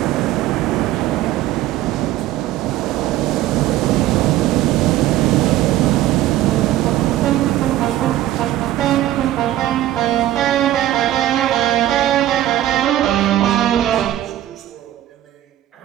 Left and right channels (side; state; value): left; quieter; 13.6 dB